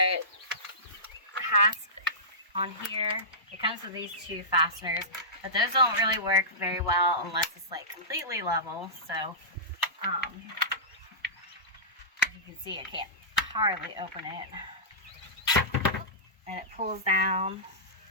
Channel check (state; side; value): normal; both; correlation -0.18